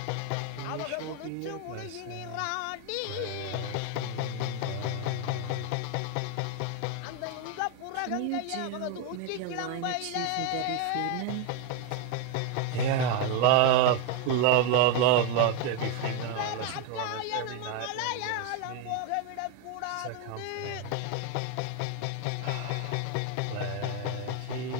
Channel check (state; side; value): different; both; correlation 0.01